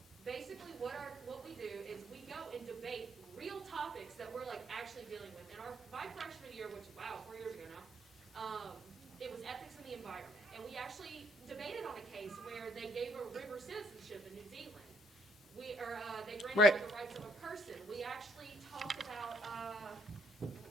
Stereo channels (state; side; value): normal; both; correlation 0.70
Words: Basically, what we do is we go and debate real topics that we're like actually dealing with. And my freshman year, which wow, 4 years ago now, it was ethics in the environment, and we actually debated on a case where they gave a river citizenship in New Zealand. They granted Right. the rights of a person. We actually talked about